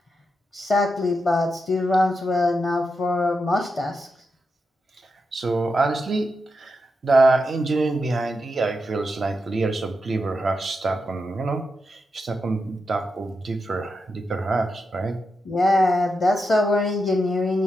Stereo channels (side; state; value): both; normal; correlation 0.86